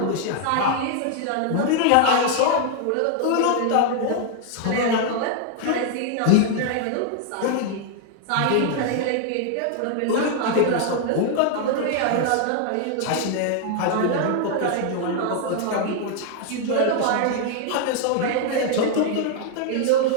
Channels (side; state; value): both; different; correlation 0.00